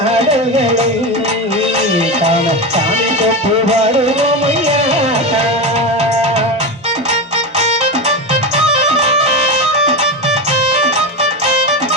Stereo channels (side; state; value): both; normal; correlation 0.18